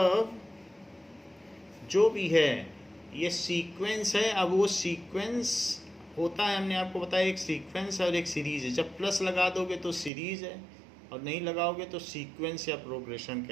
जो भी है ये सीक्वेंस है। अब वो सीक्वेंस होता है, हमने आपको बताया, एक सीक्वेंस है और एक सीरीज़ है। जब प्लस लगा दोगे तो सीरीज़ है और नहीं लगाओगे तो सीक्वेंस या प्रोग्रेशन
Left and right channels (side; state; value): left; drops out; at 10.1 s